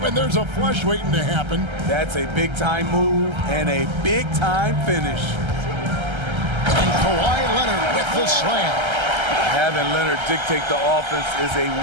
there's a flush waiting to happen. That's a big-time move and a big-time finish. And And Kawhi Leonard with the slam. Having Leonard dictate the offense is a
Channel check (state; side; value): late; left; 1.3 ms